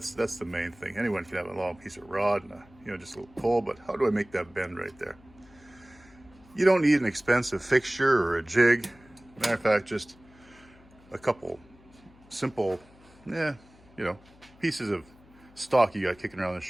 the main thing. Anyone can have a long piece of rod and just a little pull, but how do I make that bend right there? You don't need an expensive fixture or a jig. Matter of fact, just a couple simple, pieces of stock you got kicking around the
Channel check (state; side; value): noise; left; hum, 26 dB below the sound